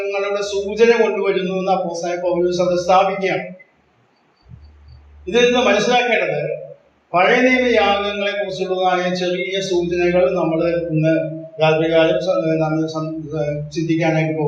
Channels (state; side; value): identical; both; correlation 1.00